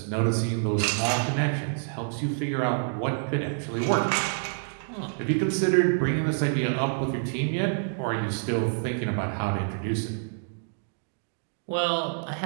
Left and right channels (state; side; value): silent; left; digital silence